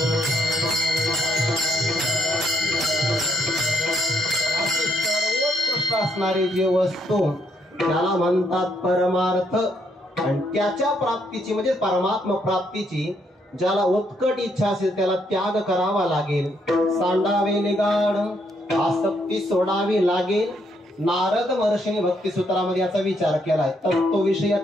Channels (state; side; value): normal; both; correlation 0.73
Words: सर्वोत्कृष्ट असणारी जी वस्तू त्याला म्हणतात परमार्थ. आणि त्याच्या प्राप्तीची म्हणजे परमात्मा प्राप्तीची ज्याला उत्कट इच्छा असेल त्याला त्याग करावा लागेल, सांडावे निगाड, आसक्ती सोडावी लागेल. नारद महर्षीने भक्ती सूत्रामध्ये याचा विचार केलाय. तत्व विषय